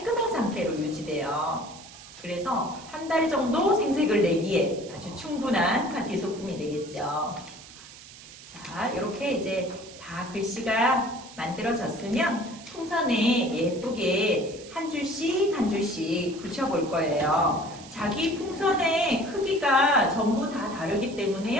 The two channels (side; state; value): right; noise; hiss, 18 dB below the sound